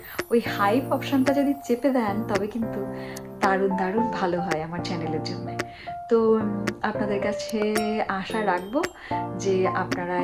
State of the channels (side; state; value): both; identical; correlation 1.00